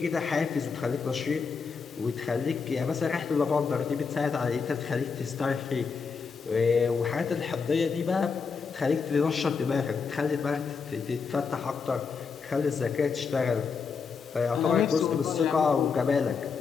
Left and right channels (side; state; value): right; quieter; 5.5 dB